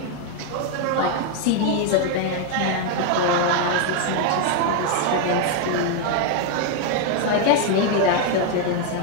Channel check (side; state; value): both; different; correlation 0.01